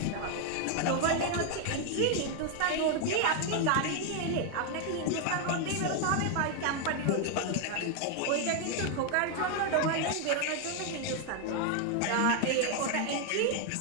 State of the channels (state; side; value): different; both; correlation 0.01